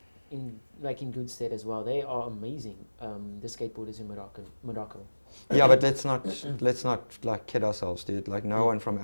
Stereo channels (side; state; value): both; inverted; correlation -1.00